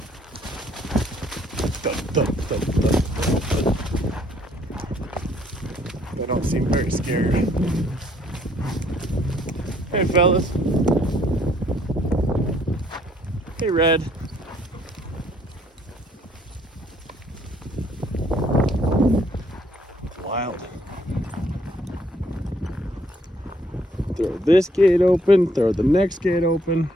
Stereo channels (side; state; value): both; normal; correlation 0.65